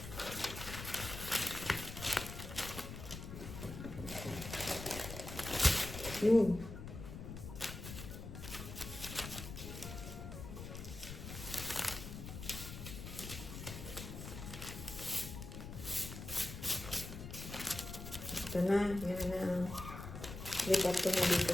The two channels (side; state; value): left; noise; rumble, 9 dB below the sound